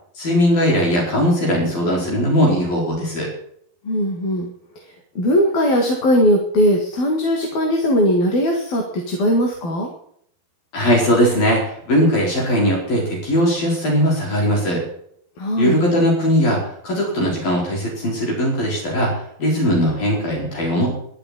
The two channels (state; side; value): late; right; 12 ms